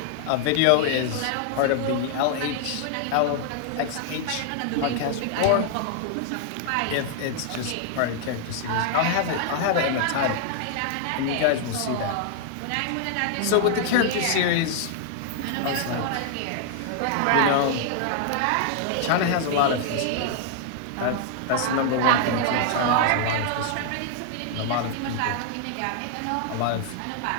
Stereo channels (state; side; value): different; both; correlation 0.00